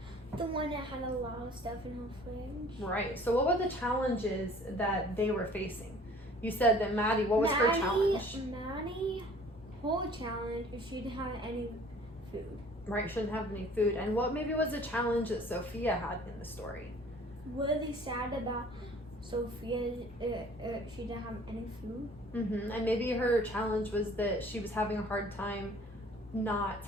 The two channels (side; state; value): both; normal; correlation 0.51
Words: The one that had a lot of stuff in her fridge. Right. So what were the challenges that they were facing? You said that Maddie, what was her challenge? Maddie, whole challenge is she didn't have any food. Right, shouldn't have any food. And what maybe was a challenge that Sophia had in the story? Really sad about Sophia, she didn't have any food. Mm-hmm. And maybe her challenge was that she was having a hard time not